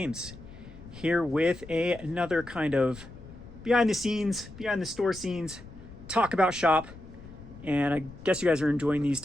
here with another kind of behind the scenes, behind the store scenes, talk about shop, and I guess you guys are enjoying these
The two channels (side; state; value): left; noise; rumble, 17 dB below the sound